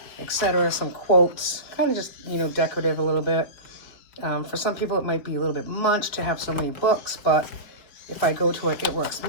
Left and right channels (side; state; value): right; late; 4.6 ms